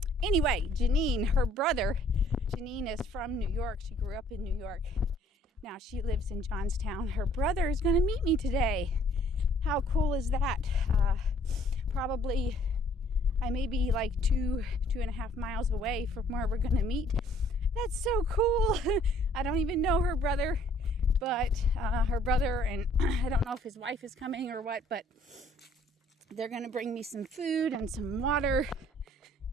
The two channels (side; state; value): both; normal; correlation 0.60